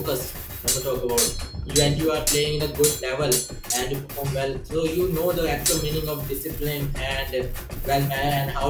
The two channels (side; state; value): both; identical; correlation 1.00